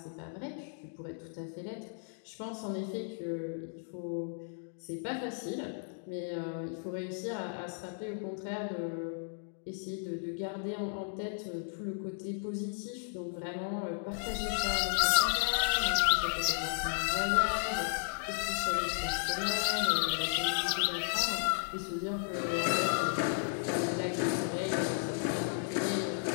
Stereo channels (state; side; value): silent; right; digital silence